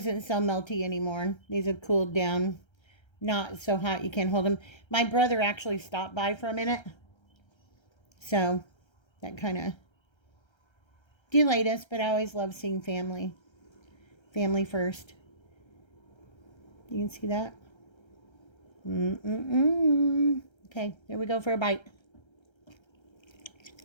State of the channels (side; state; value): right; late; 1.3 ms